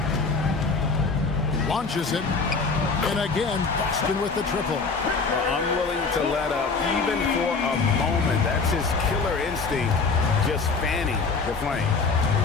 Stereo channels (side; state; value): right; quieter; 4.5 dB